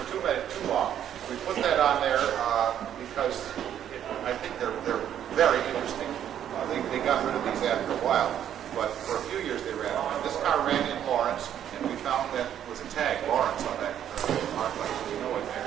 too long. We put that on there because I think they're very interesting. They got rid of these after a while, but for a few years they ran on. This car ran in Lawrence, and we found that was a tag, Lawrence, on that arc light, so we know it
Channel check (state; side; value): quieter; left; 10.1 dB